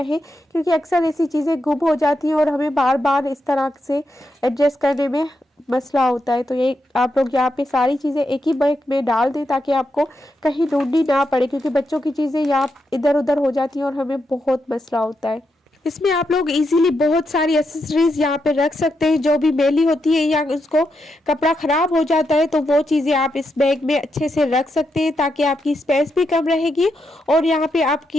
क्योंकि अक्सर ऐसी चीज़ें गुम हो जाती हैं और हमें बार बार इस तरह से एडजस्ट करने में मसला होता है। तो ये आप लोग यहाँ पे सारी चीज़ें एक ही बैग में डाल दें ताकि आपको कहीं ढूंढनी ना पड़े, क्योंकि बच्चों की चीज़ें यहाँ इधर उधर हो जाती हैं और हमें बहुत मसला होता है। इसमें आप लोग इजीली बहुत सारी एसेसरीज यहाँ पे रख सकते हैं जो भी मैली होती है या उसको कपड़ा ख़राब हो जाता है, तो वो चीज़ें आप इस बैग में अच्छे से रख सकते हैं ताकि आपकी स्पेस भी कम रहेगी और यहाँ पे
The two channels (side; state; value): both; normal; correlation 0.83